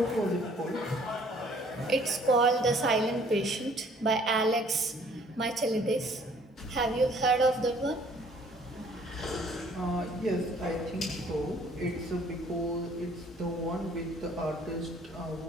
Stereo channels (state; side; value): normal; both; correlation 0.58